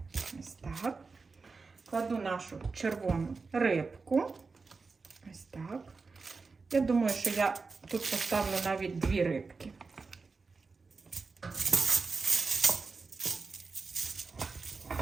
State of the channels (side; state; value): left; quieter; 4.4 dB